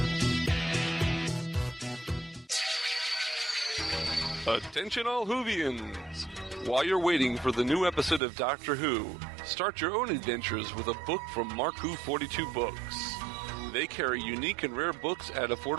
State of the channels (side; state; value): left; drops out; at 8.2 s